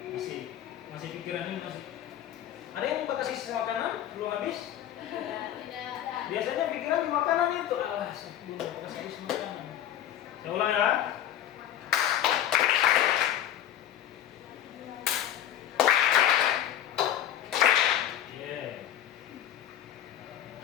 Masih pikiran ini masih. Ada yang mau kasih sisa makanan belum habis? Biasanya pikiran di makanan itu. Alah, sebelum kasih habis makanan. Saya ulang ya.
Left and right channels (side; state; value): right; quieter; 11.4 dB